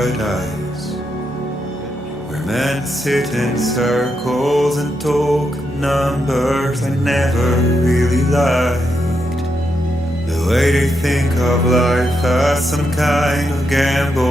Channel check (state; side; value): normal; both; correlation 0.82